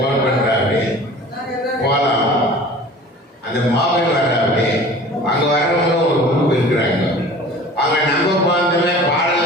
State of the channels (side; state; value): both; normal; correlation 0.43